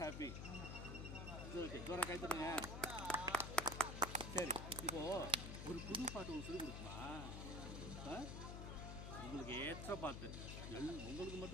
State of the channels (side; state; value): left; noise; hum, 5 dB below the sound